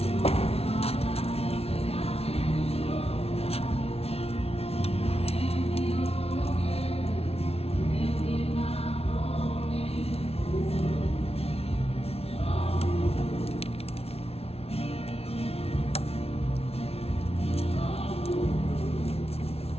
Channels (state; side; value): late; right; 0.30 ms